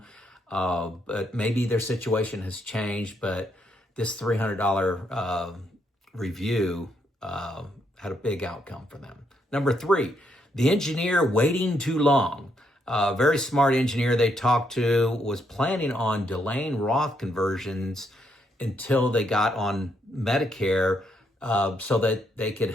but maybe their situation has changed. But this $300 review had a big outcome for them. Number three, the engineer waiting too long. A very smart engineer they talked to was planning on delaying Roth conversions until they got on Medicare so that they could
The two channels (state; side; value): normal; both; correlation 0.76